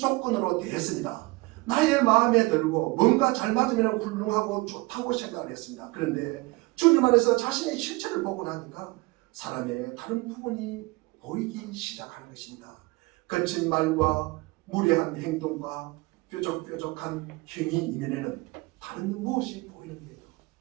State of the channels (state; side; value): quieter; left; 23.2 dB